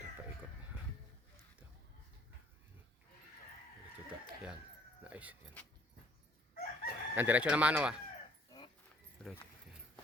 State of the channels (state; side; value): normal; both; correlation 0.60